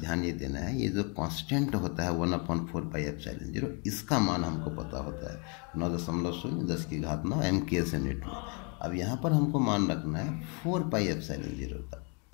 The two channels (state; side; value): quieter; right; 34.9 dB